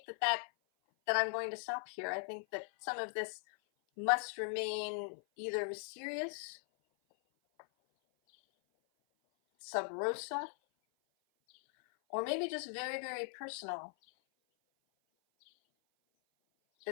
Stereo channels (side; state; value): right; silent; 51 dB below the other